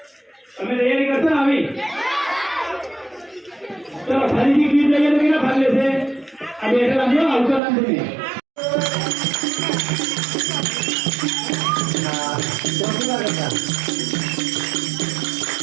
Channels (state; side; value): drops out; left; at 7.6 s